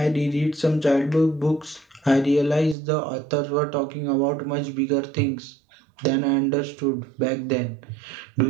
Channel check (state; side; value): drops out; left; at 2.8 s